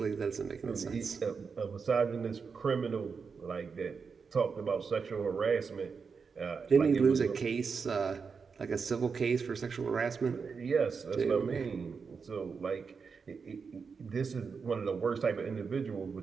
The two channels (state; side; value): quieter; left; 5.5 dB